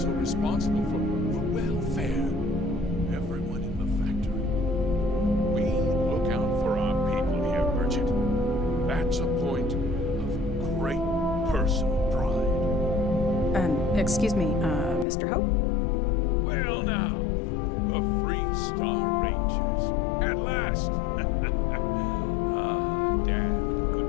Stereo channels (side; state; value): right; drops out; at 15.1 s